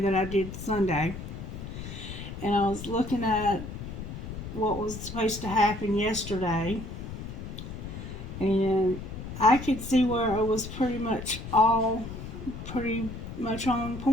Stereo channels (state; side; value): noise; left; rumble, 9 dB below the sound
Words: I did Sunday, and I was looking at what was supposed to happen yesterday, and I could see where it was pretty much on